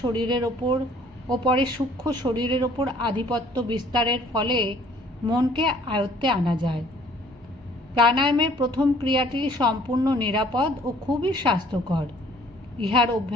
শরীরের ওপর ও পরে সূক্ষ্ম শরীরের ওপর আধিপত্য বিস্তারের ফলে মনকে আয়ত্তে আনা যায়। প্রাণায়ামের প্রথম ক্রিয়াটি সম্পূর্ণ নিরাপদ ও খুবই স্বাস্থ্যকর। ইহার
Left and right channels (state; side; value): normal; both; correlation 0.57